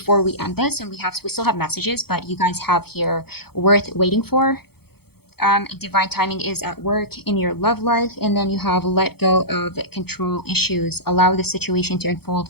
we end this, and we still have messages, but you guys have here worth waiting for. Divine timing is at work in your love life, and then you have let go of control issues, allow the situation to unfold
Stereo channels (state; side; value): late; right; 0.96 ms